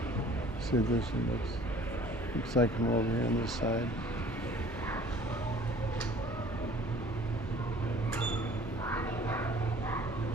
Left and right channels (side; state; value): both; normal; correlation 0.51